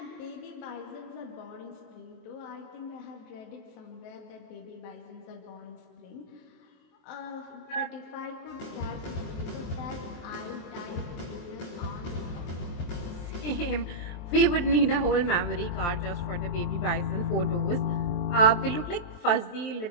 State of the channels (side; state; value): right; late; 23 ms